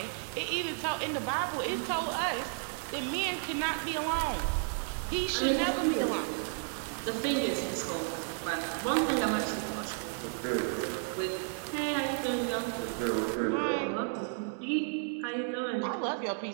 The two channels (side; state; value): left; silent; 56 dB below the other